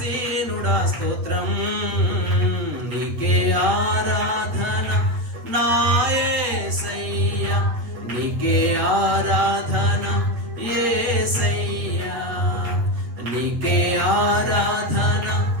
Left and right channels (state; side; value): late; left; 8.1 ms